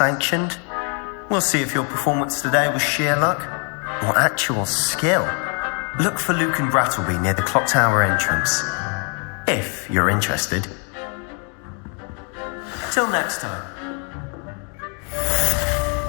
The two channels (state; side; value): quieter; right; 38.6 dB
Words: We'll see if your performance today was sheer luck or actual skill. Look for Luke and Brattleby near the clock tower entrance. If you're interested. Till next time.